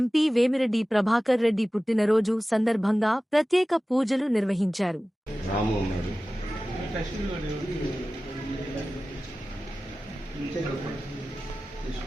వేమిరెడ్డి ప్రభాకర్ రెడ్డి పుట్టినరోజు సందర్భంగా ప్రత్యేక పూజలు నిర్వహించారు.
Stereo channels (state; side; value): normal; both; correlation 0.96